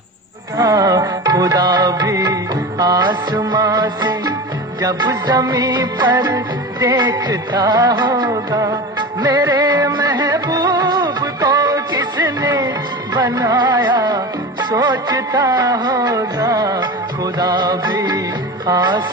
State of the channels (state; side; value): normal; both; correlation 0.28